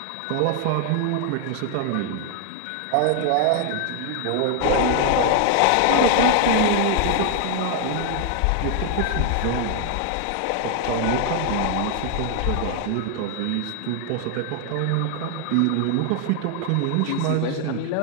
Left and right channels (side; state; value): both; different; correlation 0.00